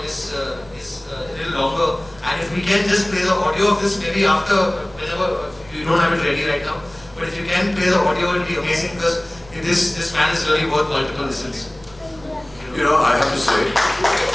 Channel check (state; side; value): noise; right; rumble, 24 dB below the sound